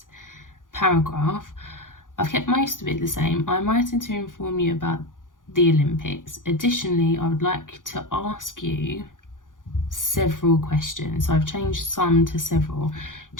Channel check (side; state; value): right; late; 0.89 ms